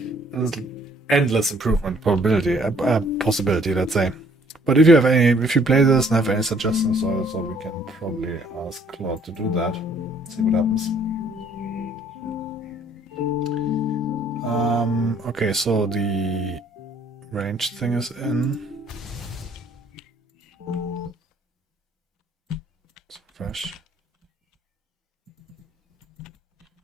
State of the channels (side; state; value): both; normal; correlation 0.62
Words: there's endless improvement possibility, let's say. But if you play this and have any suggestions also, we can probably ask Claude to do that. See what happens. Okay, so the range thing is in. It's fresh.